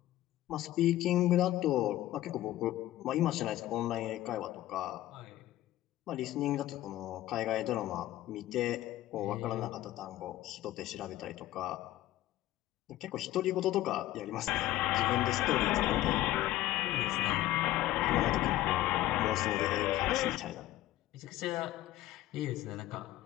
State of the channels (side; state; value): right; quieter; 14.8 dB